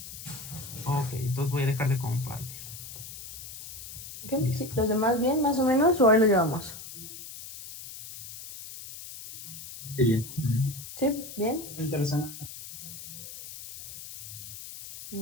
Ok, entonces voy a dejar de compartir. Okay. Sí, ¿los demás bien, más o menos, o ahí lo llevamos? Sí, bien. ¿Sí? ¿Bien? Interesante.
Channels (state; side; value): noise; left; hiss, 12 dB below the sound